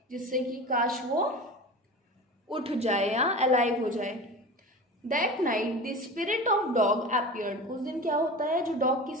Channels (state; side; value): normal; both; correlation 0.32